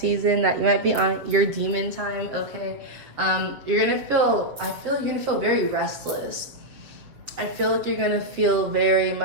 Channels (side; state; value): left; late; 7.3 ms